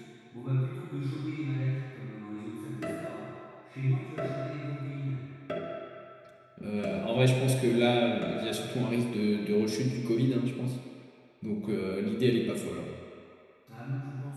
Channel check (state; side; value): identical; both; correlation 1.00